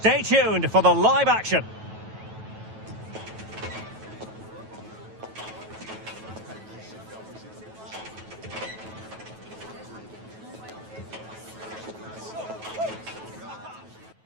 tuned for the live action.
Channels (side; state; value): left; late; 9.2 ms